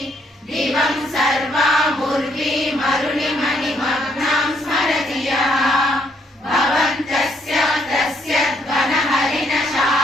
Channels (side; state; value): both; normal; correlation 0.71